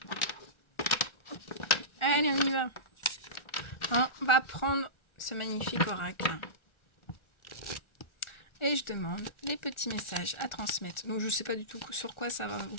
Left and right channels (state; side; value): late; right; 1.4 ms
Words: Allez, on y va. On va prendre ce magnifique oracle. Et je demande les petits messages à transmettre. Donc je ne sais pas du tout sur quoi ça va vous